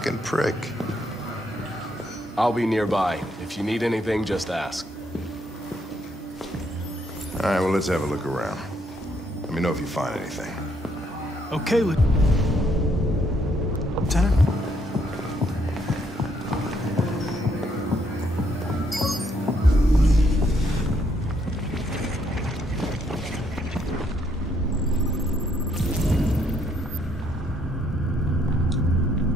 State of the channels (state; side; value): normal; both; correlation 0.72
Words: prick. I'll be nearby. If you need anything, just ask. All right, well, let's have a look around. Let me know if you find anything. Okay, Lieutenant.